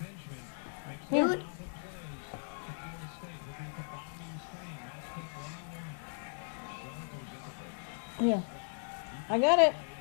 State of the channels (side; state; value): right; silent; digital silence